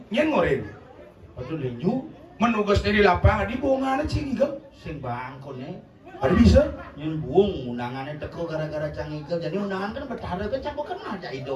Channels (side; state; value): both; identical; correlation 1.00